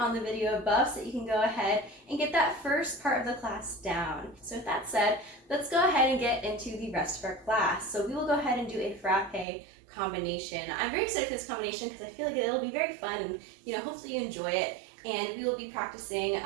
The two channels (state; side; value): drops out; left; at 9.5 s